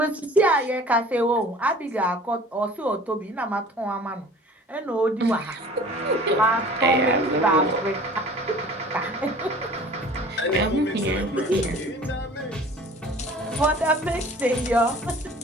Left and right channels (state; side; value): normal; both; correlation 0.46